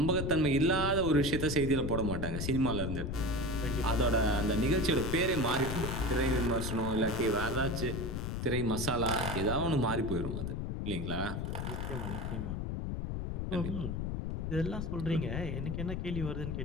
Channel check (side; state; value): left; noise; rumble, 3 dB below the sound